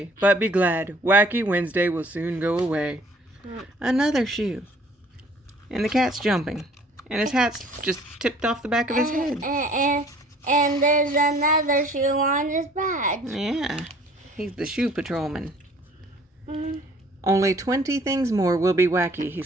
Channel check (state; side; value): normal; both; correlation 0.55